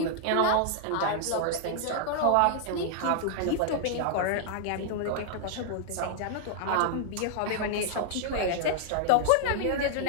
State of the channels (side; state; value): both; different; correlation -0.01